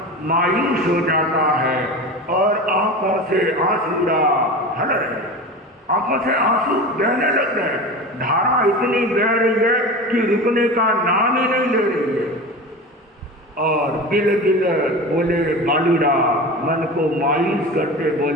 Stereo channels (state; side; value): normal; both; correlation 0.30